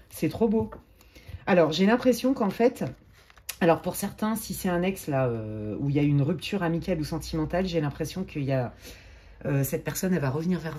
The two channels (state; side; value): identical; both; correlation 1.00